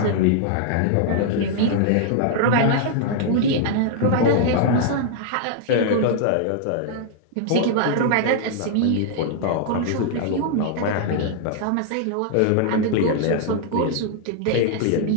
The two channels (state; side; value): different; both; correlation -0.01